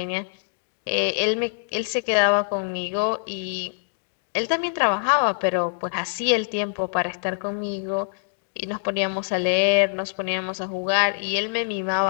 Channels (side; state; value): right; silent; digital silence